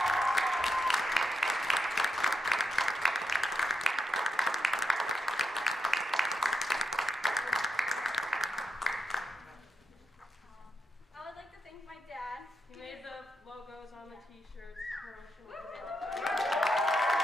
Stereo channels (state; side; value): normal; both; correlation 0.83